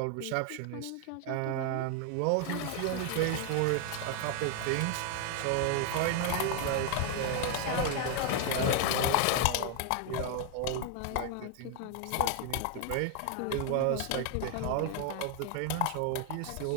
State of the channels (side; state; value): both; different; correlation 0.01